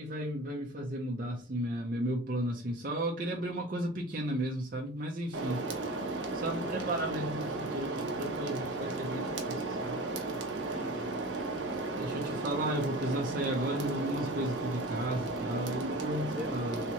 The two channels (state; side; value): normal; both; correlation 0.36